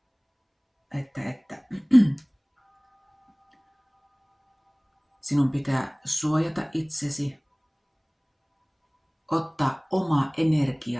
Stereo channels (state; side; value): identical; both; correlation 1.00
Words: sinun pitää suojata itsesi, ottaa oma